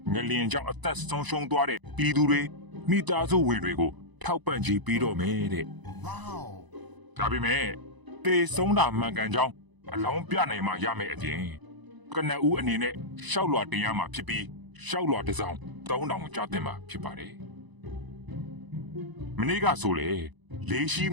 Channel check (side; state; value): left; late; 1.0 ms